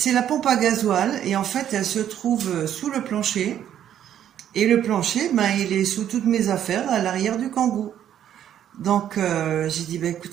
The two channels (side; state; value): left; quieter; 10.4 dB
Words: la pompe à gasoil, et en fait, elle se trouve sous le plancher. Et le plancher, il est sous toutes mes affaires, à l'arrière du kangou. Donc, j'ai dit,